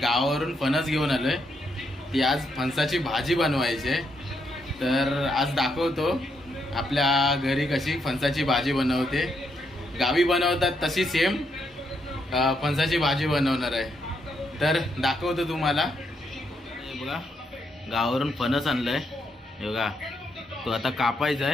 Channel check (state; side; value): normal; both; correlation 0.78